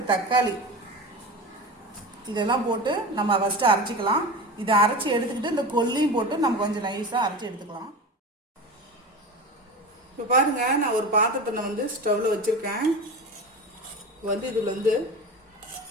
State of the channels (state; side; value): normal; both; correlation 0.29